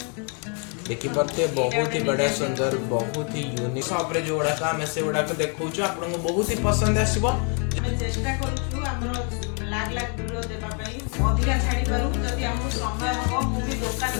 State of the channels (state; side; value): quieter; right; 39.0 dB